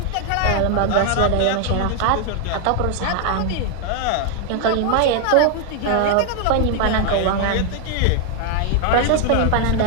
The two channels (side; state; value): both; different; correlation 0.00